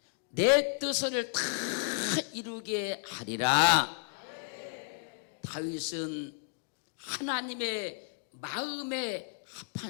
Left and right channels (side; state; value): right; silent; 56 dB below the other